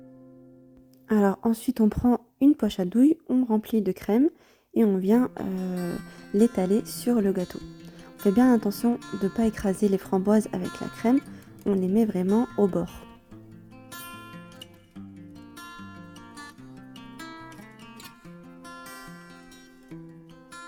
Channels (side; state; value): both; identical; correlation 1.00